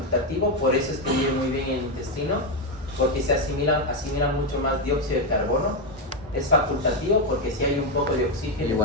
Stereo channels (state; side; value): normal; both; correlation 0.07